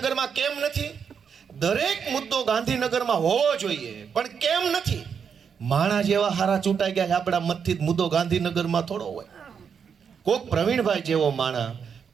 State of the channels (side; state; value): left; quieter; 6.8 dB